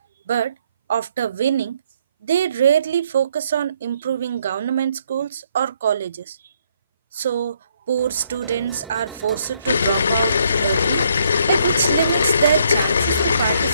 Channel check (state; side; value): inverted; both; correlation -0.70